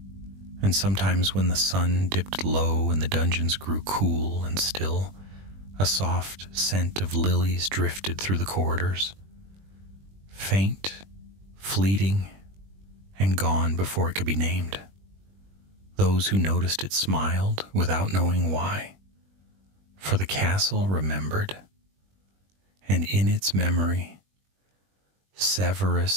And sometimes when the sun dipped low and the dungeons grew cool and still, a soft scent of lilies drifted through the corridors, faint, fleeting, and gone before it could be named. Those who noticed it smiled without knowing why, for the castle remembered, and in its memory,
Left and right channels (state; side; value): late; left; 21 ms